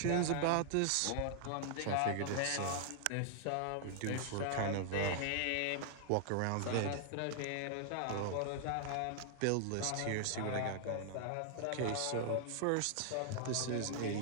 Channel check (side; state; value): both; different; correlation 0.00